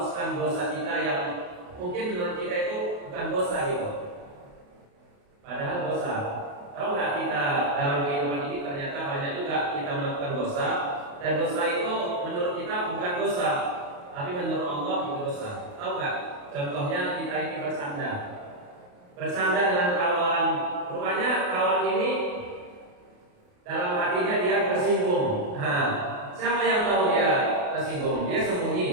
dosa kita yang mungkin menurut kita itu bukan dosa gitu, padahal dosa. Tahu nggak kita dalam kehidupan ini ternyata banyak juga kita melakukan dosa, dan dosa itu menurut kita bukan dosa, tapi menurut Allah itu dosa. Tahu nggak? Contohnya kita ini bersandar dengan kawan. Rupanya kawan ini dalam hatinya dia tersinggung. Siapa yang tahu dia tersinggung? Dia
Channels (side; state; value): left; late; 28 ms